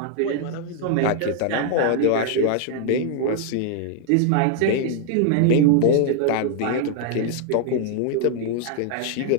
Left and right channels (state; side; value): different; both; correlation 0.00